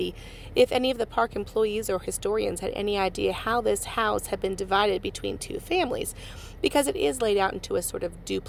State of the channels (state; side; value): identical; both; correlation 1.00